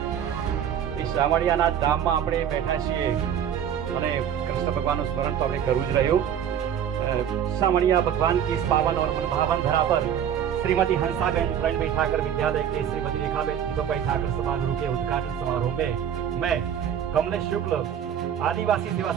એ શામળિયાના ધામમાં આપણે બેઠા છીએ અને કૃષ્ણ ભગવાનનું સ્મરણ તો આપણે કરવું જ રહ્યું शामणिया भगवान की इस पावन और मनभावन धरा पर श्रीमती हंसाबेन प्रण बैठाकर विद्यालय के श्रीमती रेखाबेन दीपक बैठाकर समारोह के उद्घाटन समारोह में मैं कमलेश शुक्ल आदिवासी सेवा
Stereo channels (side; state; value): left; quieter; 9.2 dB